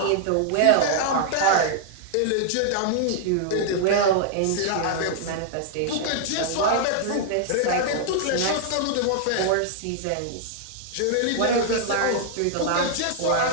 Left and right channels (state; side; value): different; both; correlation -0.01